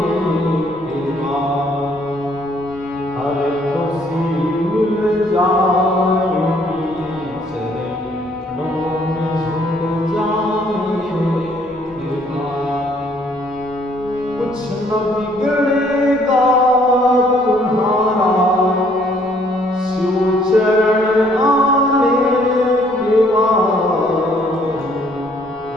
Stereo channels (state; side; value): normal; both; correlation 0.64